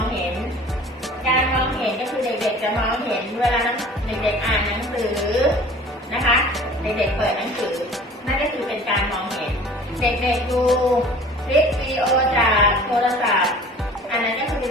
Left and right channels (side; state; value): both; normal; correlation 0.45